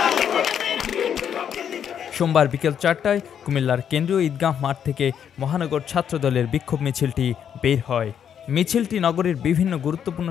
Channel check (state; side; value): quieter; right; 8.6 dB